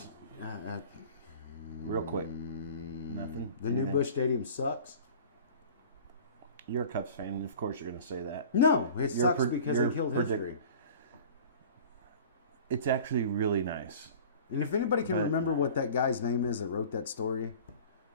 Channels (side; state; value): both; inverted; correlation -0.42